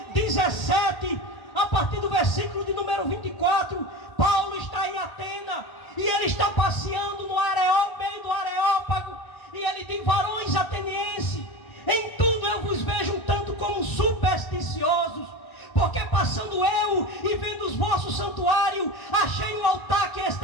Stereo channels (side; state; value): right; late; 1.1 ms